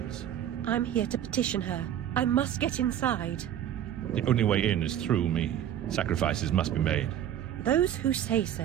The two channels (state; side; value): quieter; left; 10.6 dB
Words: I'm here to petition her. I must get inside. The only way in is through me. Sacrifices must be made. Those who say